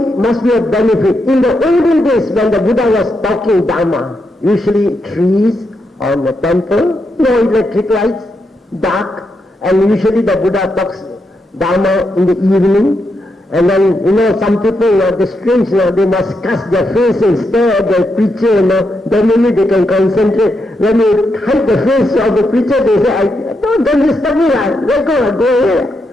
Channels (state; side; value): normal; both; correlation 0.83